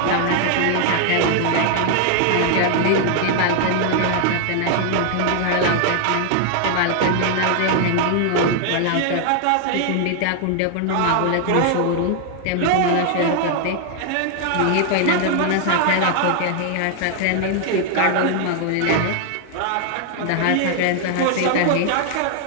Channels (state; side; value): different; both; correlation 0.00